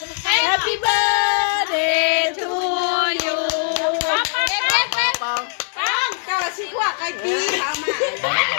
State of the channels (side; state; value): right; silent; 65 dB below the other